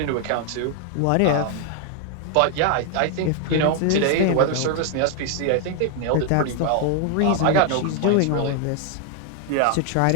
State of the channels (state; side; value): different; both; correlation 0.00